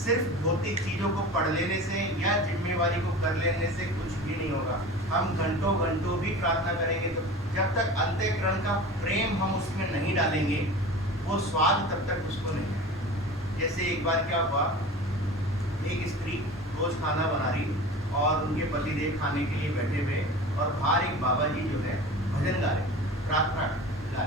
सिर्फ भौतिक चीज़ों को पढ़ लेने से या जिम्मेवारी को कर लेने से कुछ भी नहीं होगा। हम घंटों घंटों भी प्रार्थना करेंगे तो जब तक अंतःकरण का प्रेम हम उसमें नहीं डालेंगे वो स्वाद तब तक उसको नहीं है। जैसे एक बार क्या हुआ, एक स्त्री रोज खाना बना रही और उनके पतिदेव खाने के लिए बैठे हुए और बाहर एक बाबा जी जो है भजन गा रहे, प्रार्थना गा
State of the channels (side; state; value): both; normal; correlation 0.35